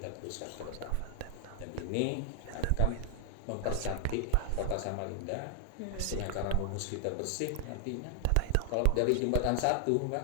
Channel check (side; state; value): both; different; correlation 0.00